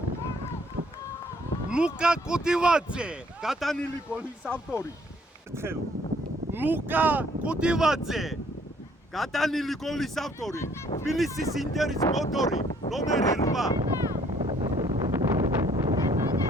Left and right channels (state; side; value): normal; both; correlation 0.62